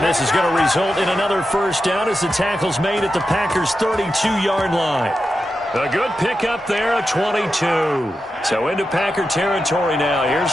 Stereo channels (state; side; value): normal; both; correlation 0.89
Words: this is going to result in another first down as the tackle's made at the Packers' 32-yard line. A good pickup there, a 22. So into Packer territory now. Here's